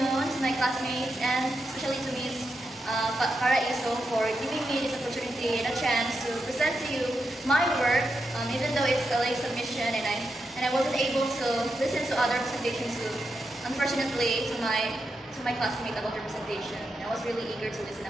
to my classmates and especially to Ms. Paraiso for giving me this opportunity and a chance to present to you my work, even though it's a late submission and I wasn't able to listen to other presentations unfortunately to my classmates about their presentation. I was really eager to listen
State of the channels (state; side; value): normal; both; correlation 0.86